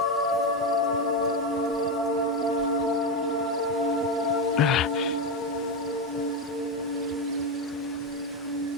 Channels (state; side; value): normal; both; correlation 0.10